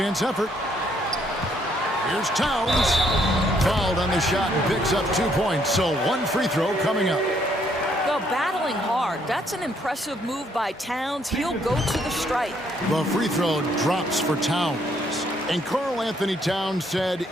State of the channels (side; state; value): both; normal; correlation 0.69